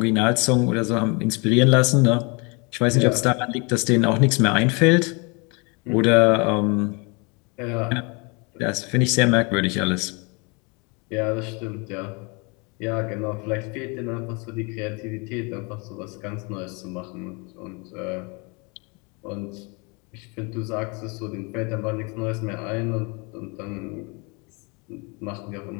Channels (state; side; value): quieter; right; 30.8 dB